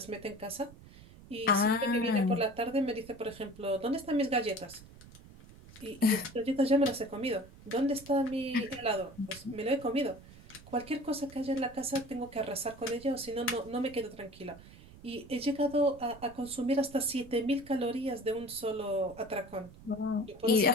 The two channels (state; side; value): noise; right; rumble, 20 dB below the sound